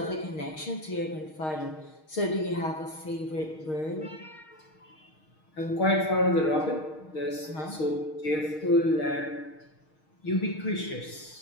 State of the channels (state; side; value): late; right; 6.4 ms